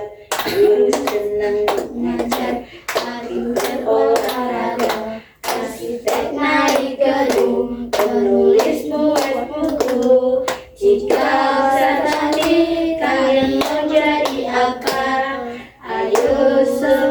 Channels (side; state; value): both; identical; correlation 1.00